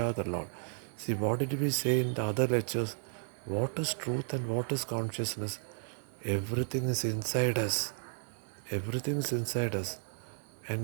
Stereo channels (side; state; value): left; silent; 55 dB below the other